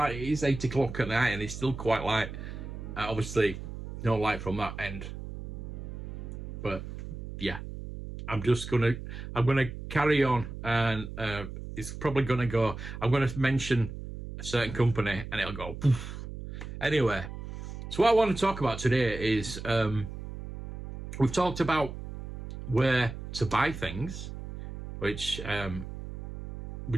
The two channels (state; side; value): noise; right; hum, 9 dB below the sound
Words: It is 8 o'clock at night, and it's still quite light. Obviously, no light from that end. But yeah, I'm gonna carry on, and it's probably gonna go. I'm gonna mention a certain company, and it'll go poof. Anyway, so what I want to talk about today is we've talked about where to buy things, which